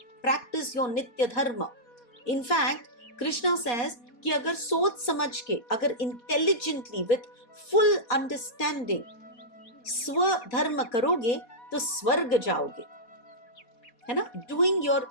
Practice your Nitya Dharma. In fact, Krishna says कि अगर सोच समझ के, अगर intelligently, with full understanding, स्वधर्म करोगे तो स्वर्ग जाओगे, है ना? Doing your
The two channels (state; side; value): late; right; 4.2 ms